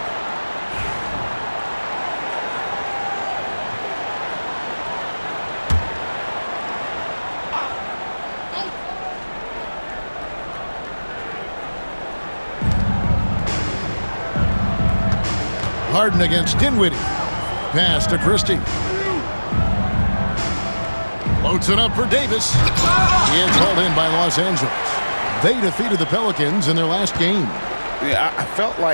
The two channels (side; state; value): both; inverted; correlation -1.00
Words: Harden against Dinwiddie. Pass to Christie. Floats it up for Davis. It's hauled in by Los Angeles. They defeated the Pelicans in their last game. Yeah, I felt